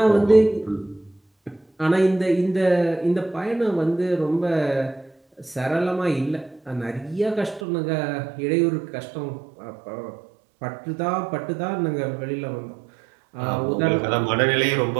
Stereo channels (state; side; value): drops out; left; at 7.7 s